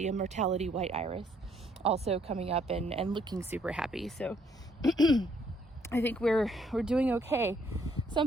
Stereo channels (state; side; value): normal; both; correlation 0.67